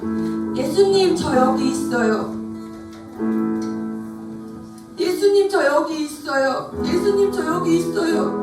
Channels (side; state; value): both; identical; correlation 1.00